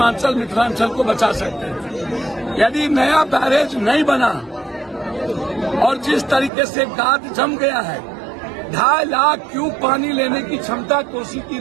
मिथिलांचल को बचा सकते हैं। यदि नया बैरेज नहीं बना और जिस तरीके से गाद जम गया है, 2.5 लाख क्यूब पानी लेने की क्षमता कोसी की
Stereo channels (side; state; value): left; drops out; at 6.5 s